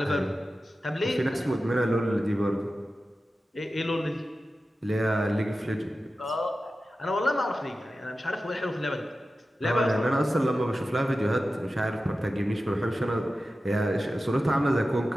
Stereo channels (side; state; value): both; normal; correlation 0.93